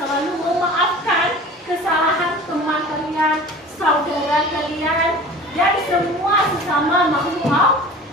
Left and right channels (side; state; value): both; normal; correlation 0.40